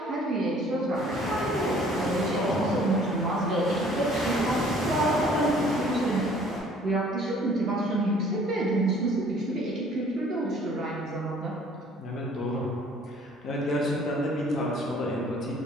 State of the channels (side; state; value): both; normal; correlation 0.55